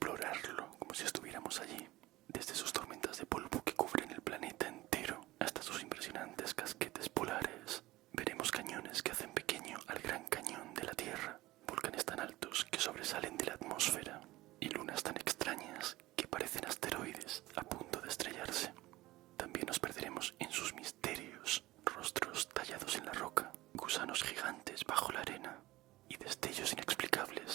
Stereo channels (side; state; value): left; quieter; 18.1 dB